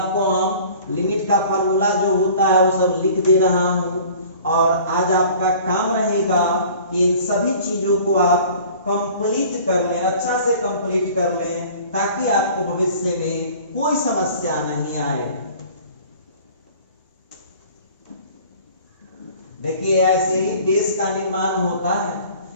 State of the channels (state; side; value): inverted; both; correlation -0.47